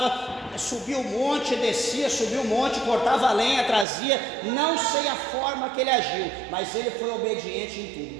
subia o monte, descia, subia o monte, cortava a lenha, trazia. Não sei a forma que ele agiu, mas ele foi obediente em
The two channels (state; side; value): drops out; left; at 3.9 s